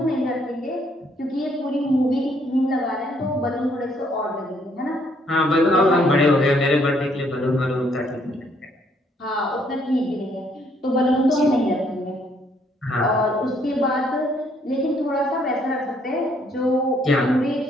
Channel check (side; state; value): both; normal; correlation 0.68